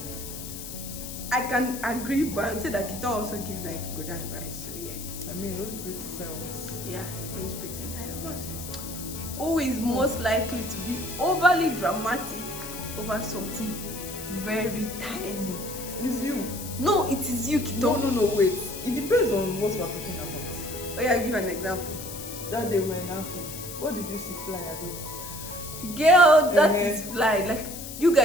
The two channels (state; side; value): noise; left; hiss, 10 dB below the sound